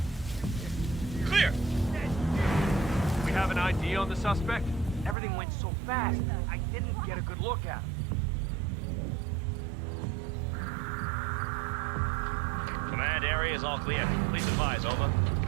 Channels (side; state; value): left; drops out; at 5.2 s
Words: Clear! We have an ID on the suspect? Everything went so fast, I didn't get a good look at him. Command area is all clear. Please advise, over.